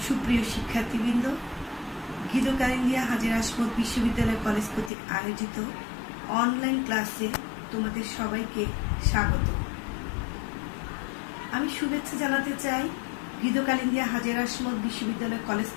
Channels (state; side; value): drops out; right; at 4.9 s